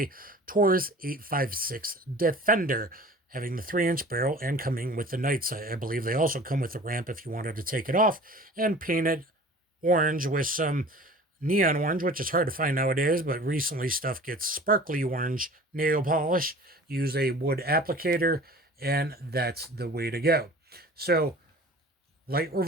Taurus 856 Defender, having the 3-inch barrel and coming with the night sight. I believe they also come with the ramp if you wanted to take it off and paint it orange with some neon orange, which is hard to find nowadays, but recently stuff gets sparkly orange nail polish. Use a wood applicator, and that's the way to go. So, light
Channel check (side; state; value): both; normal; correlation 0.43